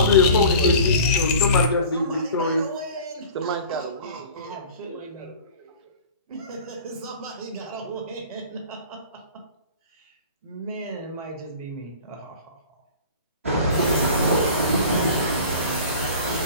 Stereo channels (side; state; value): both; inverted; correlation -0.41